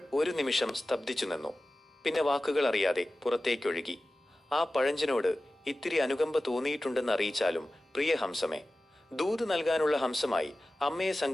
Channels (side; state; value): both; normal; correlation 0.95